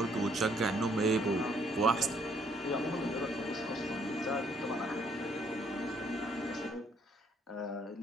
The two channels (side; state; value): both; normal; correlation 0.67